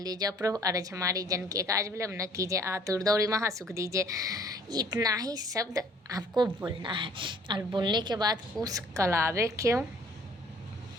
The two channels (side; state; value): both; normal; correlation 0.57